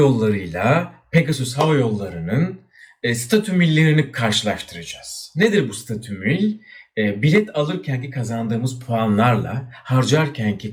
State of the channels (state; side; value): identical; both; correlation 1.00